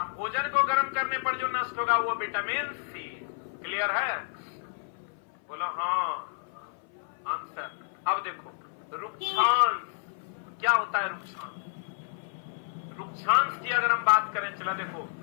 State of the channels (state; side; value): silent; right; 56 dB below the other